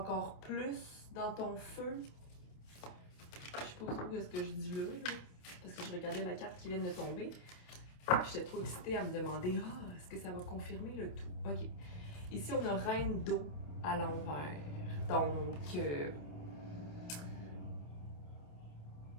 plus dans ton feu? Je sais pas trop ce que je dis là, parce que je regardais la carte qui vient de tomber. J'étais trop excitée à me demander, est-ce que ça va confirmer le tout? Ok. Ici, on a reine d'eau à l'envers. Donc,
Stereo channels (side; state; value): right; late; 28 ms